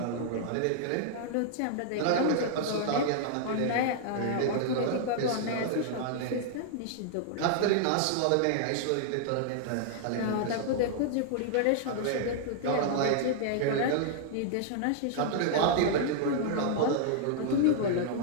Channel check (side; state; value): both; different; correlation -0.01